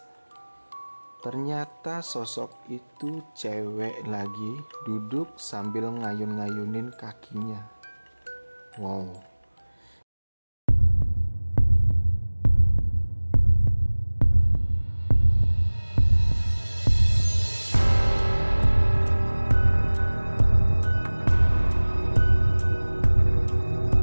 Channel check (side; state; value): both; inverted; correlation -1.00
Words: ternyata sosok itu cewek lagi duduk sambil ngayun-ngayunin kakinya. Wow.